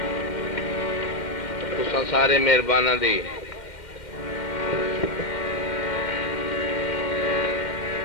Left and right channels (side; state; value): right; late; 2.1 ms